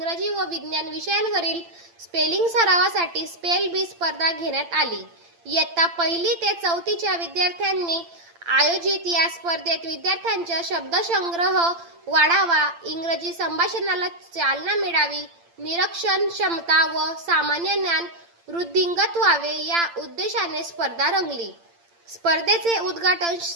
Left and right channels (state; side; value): late; left; 8.8 ms